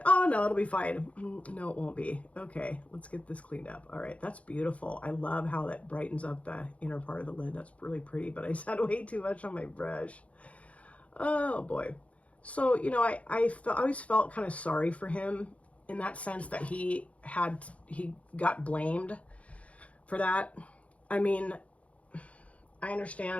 no, it'll be fine. No, it won't be. Okay, let's get this cleaned up. All right, that's beautiful. I love how that brightens up the inner part of the lid. That's really pretty, but I just had way too much on my brush. Oh boy. So, you know, I always felt kind of sorry for him in that sense that he got blamed for that. I mean, I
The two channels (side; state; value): right; late; 0.065 ms